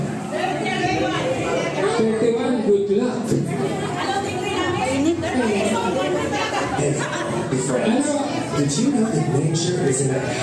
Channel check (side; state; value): both; identical; correlation 1.00